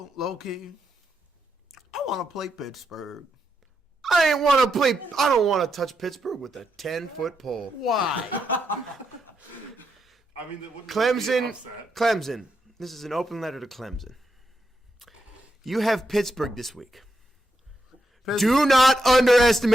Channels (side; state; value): both; normal; correlation 0.84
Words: low key? I want to play Pittsburgh. I don't want to touch Pittsburgh with a 10-foot pole. Why? I mean, it wouldn't be an upset. Clemson. This is an open letter to Clemson. You have Pittsburgh this week. Do not